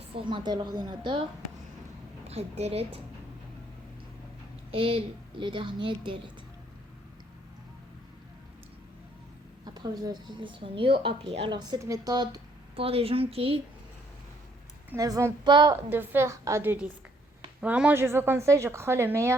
l'ordinateur. Après delete. Et le dernier delete. Après vous allez cliquer sur new appli. Alors cette méthode pour les gens qui ne vont pas de faire à deux disques. Vraiment je vous conseille, je crois le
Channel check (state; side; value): normal; both; correlation 0.67